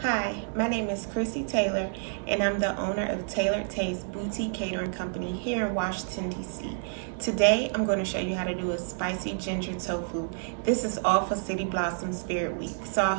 Hi, my name is Crissy Taylor, and I'm the owner of Tailored Taste Boutique Catering Company here in Washington, D.C. Today, I'm going to show you how to do a spicy ginger tofu. This is all for City Blossom Spirit Week, so I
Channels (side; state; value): left; silent; digital silence